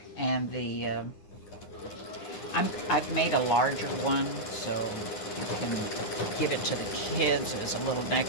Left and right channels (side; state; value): right; late; 9.4 ms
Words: and the I've made a larger one so you can give it to the kids as a little